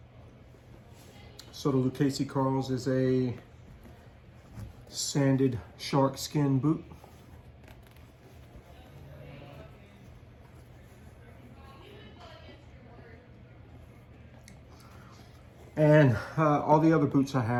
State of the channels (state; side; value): identical; both; correlation 1.00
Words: So the Lucchese Carls is a sanded shark skin boot. And all the other boots I